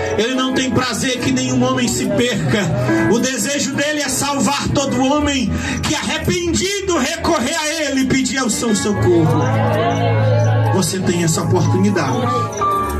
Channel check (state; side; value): identical; both; correlation 1.00